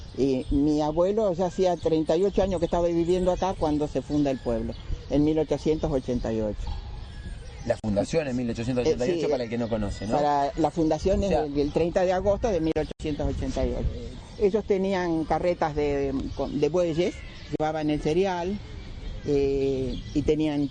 Y mi abuelo ya hacía 38 años que estaba viviendo acá cuando se funda el pueblo, en 1888. La fundación en 1888, para el que no conoce, ¿no? Para la fundación el 30 de agosto de 1888. Ellos tenían carretas de bueyes, llevaban el cereal y tenían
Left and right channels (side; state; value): both; identical; correlation 1.00